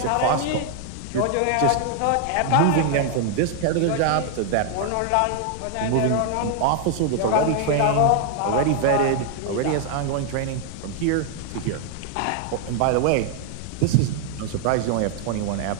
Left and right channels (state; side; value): different; both; correlation 0.00